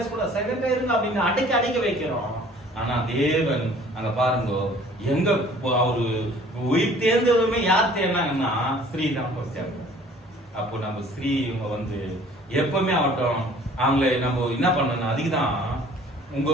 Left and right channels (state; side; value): normal; both; correlation 0.52